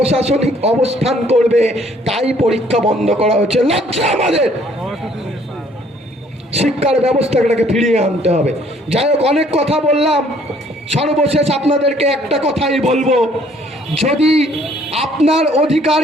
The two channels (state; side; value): normal; both; correlation 0.61